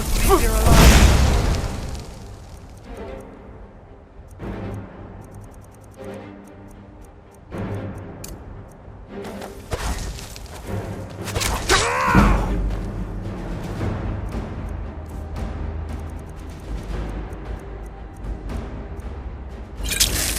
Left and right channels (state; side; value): identical; both; correlation 1.00